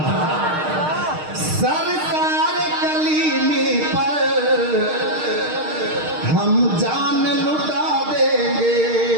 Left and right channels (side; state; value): left; late; 6.5 ms